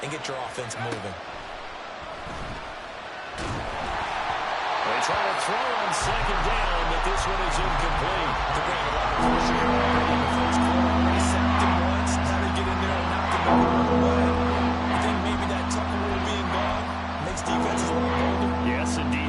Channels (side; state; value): both; identical; correlation 1.00